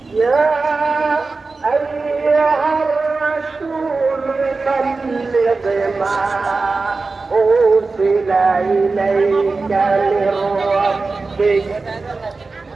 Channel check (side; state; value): left; quieter; 3.9 dB